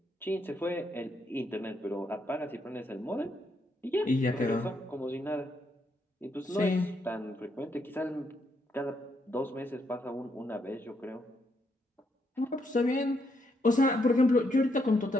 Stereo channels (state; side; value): normal; both; correlation 0.77